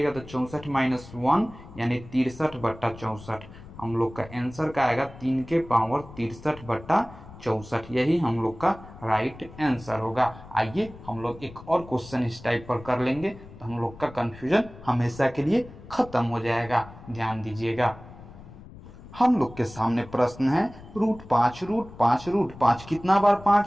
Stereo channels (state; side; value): noise; left; rumble, 17 dB below the sound